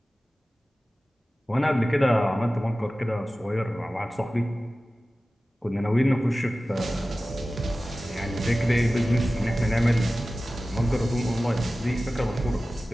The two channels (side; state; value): both; normal; correlation 0.96